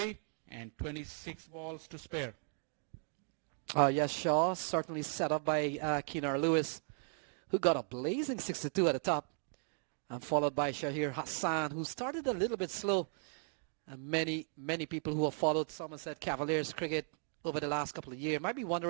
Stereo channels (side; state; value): left; silent; 53 dB below the other